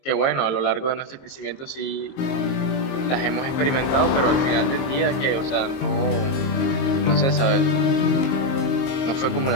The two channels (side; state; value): right; late; 22 ms